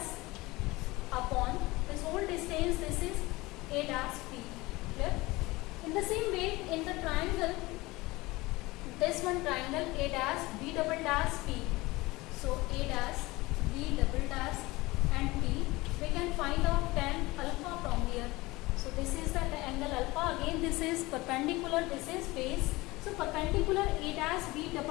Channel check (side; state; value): right; quieter; 21.2 dB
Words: upon this whole distance, this is A dash, P. Clear? In the same way, in the triangle, this one triangle A dash, B double dash, P. So A dash, B double dash and P. We can find out tan alpha from here. So this is the angle alpha. Again this is perpendicular, this is base. So perpendicular A dash, B